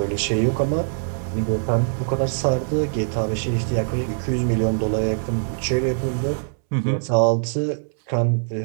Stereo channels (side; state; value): left; silent; 64 dB below the other